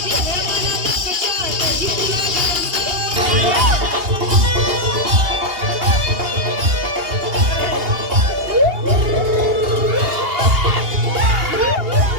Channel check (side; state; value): left; late; 2.8 ms